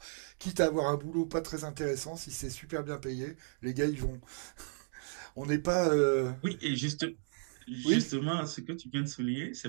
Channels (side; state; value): left; silent; digital silence